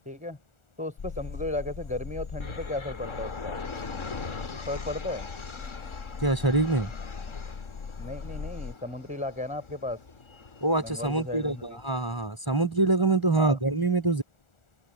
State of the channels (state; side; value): late; right; 1.4 ms